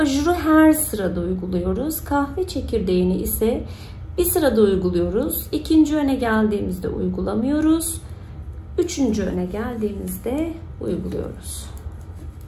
her sırada uyguluyoruz. Kahve çekirdeğini ise bir sırada uyguluyoruz. 2. öne geldiğimizde uygulamıyoruz. 3. öne geldiğimizde uyguluyoruz.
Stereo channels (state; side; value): identical; both; correlation 1.00